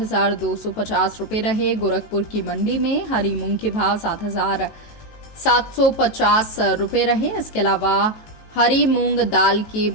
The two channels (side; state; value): right; late; 18 ms